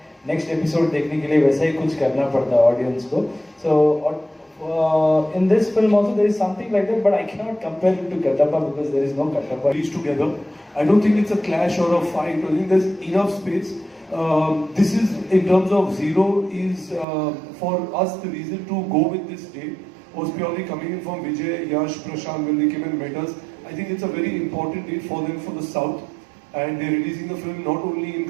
नेक्स्ट एपिसोड देखने के लिए वैसा ही कुछ करना पड़ता है ऑडियंस को. So in this film also there is something like that, but I cannot compare it to Kattappa because there is no Kattappa. Reach together. I don't think it's a clash or a fight. I think there's enough space. This is, in terms of Zero, is for us the reason to go with this date was purely coming in from Vijay, Yash, Prashant when they came and met us. I think it's a very important date for them for the South, and they're releasing the film not only in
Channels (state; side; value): drops out; left; at 17.1 s